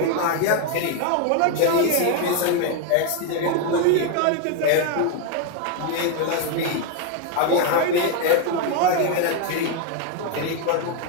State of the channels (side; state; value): both; different; correlation 0.01